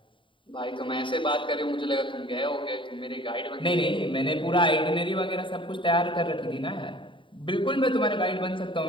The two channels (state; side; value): late; right; 0.24 ms